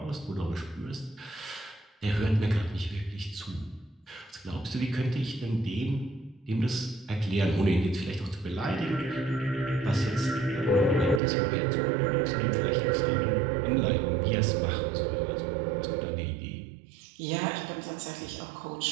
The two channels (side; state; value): left; drops out; at 11.2 s